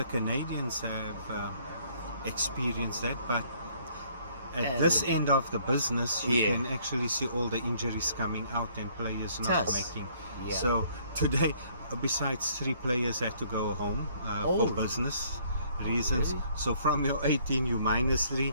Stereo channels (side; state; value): both; inverted; correlation -0.62